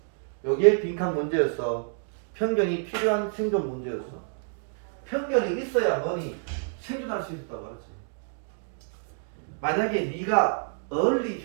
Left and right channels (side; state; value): left; silent; digital silence